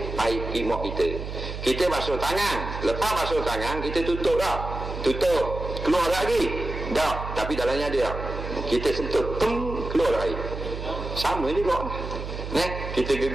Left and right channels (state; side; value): noise; right; hum, 7 dB below the sound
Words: air imak kita. Kita basuh tangan. Lepas basuh tangan, kita tutup dah. Tutup. Keluar lagi. Tak. Tapi dalamnya ada tak? Kita sentuh. Keluar air. Sama juga. Kita